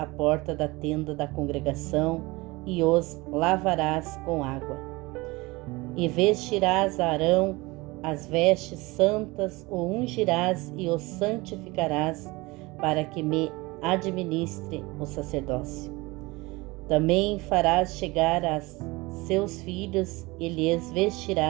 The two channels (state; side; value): quieter; left; 22.9 dB